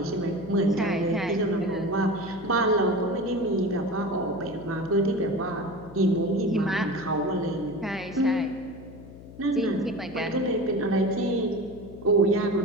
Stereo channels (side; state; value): left; noise; hum, 17 dB below the sound